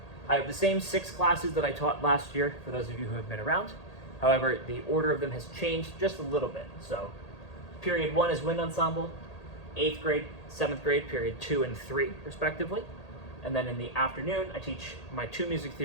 I have the same 6 classes that I taught last year for those of you who have been around. However, the order of them has changed just a little bit. So period 1 is wind ensemble, 8th grade, 7th grade, period 2 and 3 respectively. And then in the afternoon, I teach my 2 music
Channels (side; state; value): right; late; 1.8 ms